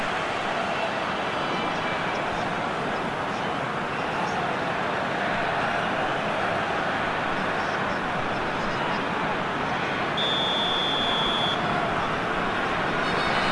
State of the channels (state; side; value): identical; both; correlation 1.00